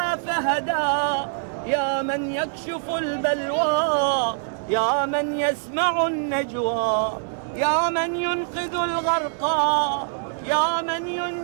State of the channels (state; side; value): silent; left; 58 dB below the other